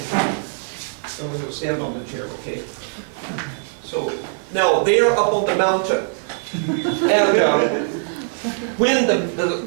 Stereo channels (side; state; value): left; silent; digital silence